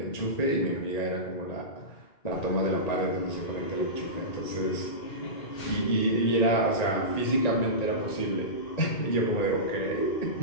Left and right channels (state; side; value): late; right; 1.9 ms